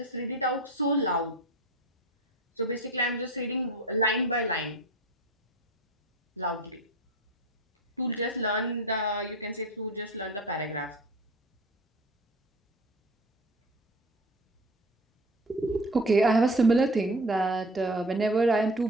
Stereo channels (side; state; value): both; normal; correlation 0.36